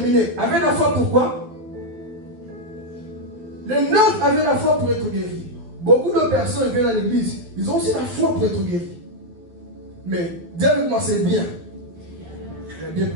avaient la foi pourquoi? Les 9 avaient la foi pour être guéris. Beaucoup de personnes viennent à l'église, ils ont aussi la foi pour être guéris. Mais, dis avec moi, c'est bien. Il y a bien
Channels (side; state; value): left; late; 12 ms